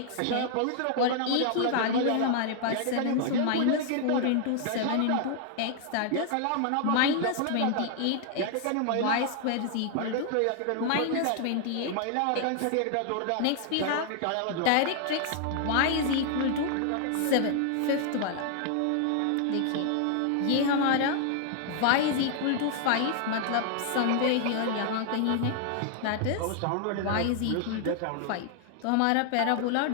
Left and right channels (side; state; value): both; different; correlation 0.00